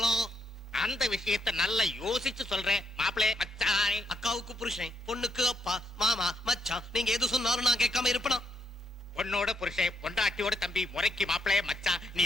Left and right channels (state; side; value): normal; both; correlation 0.78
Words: அந்த விஷயத்தை நல்லா யோசிச்சு சொல்றேன். மாப்பிளே மச்சான், அக்காவுக்கு புருஷன், பொண்ணுக்கு அப்பா, மாமா மச்சான், நீங்க எது சொன்னாலும் நான் கேட்காம இருப்பேனா? பொண்ணோட புருஷன், பொண்டாட்டியோட தம்பி, முறைக்கு மாப்பிளே மச்சான், நீ